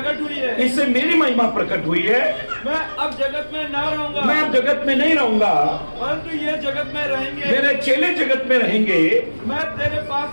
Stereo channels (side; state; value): both; inverted; correlation -1.00